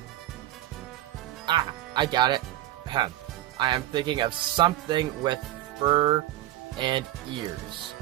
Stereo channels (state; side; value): quieter; left; 15.1 dB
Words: I got it. I am thinking of something with fur and ears.